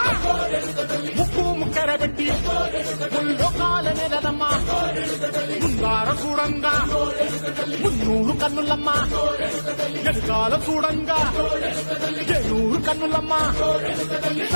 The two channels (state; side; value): inverted; both; correlation -1.00